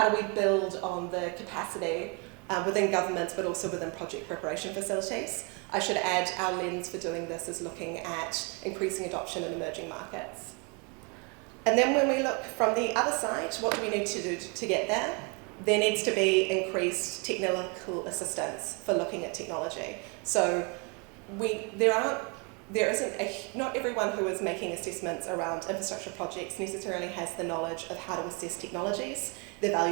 do we build on the capacity within governments, but also within project preparation facilities. I should add our lens for doing this is looking at increasing adoption in emerging markets. And then when we look from the other side, what do we need to do to get there? There needs to be increased technical assistance for looking at technology. So not everyone who is making assessments around infrastructure projects necessarily has the knowledge of how to assess technologies, their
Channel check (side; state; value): left; quieter; 33.0 dB